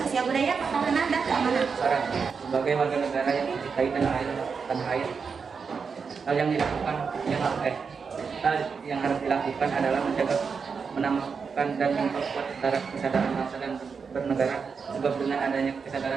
budaya, pertahanan, dan keamanan. Sebagai warga negara yang mencintai tanah air, hal yang harus dilakukan adalah menjaga, menambahkan dan memperkuat kesadaran bangsa dan bernegara, sebab dengan adanya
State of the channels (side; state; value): left; quieter; 5.6 dB